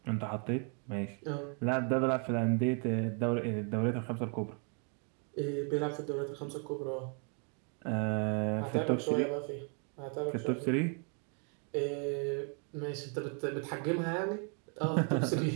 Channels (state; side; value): quieter; left; 39.3 dB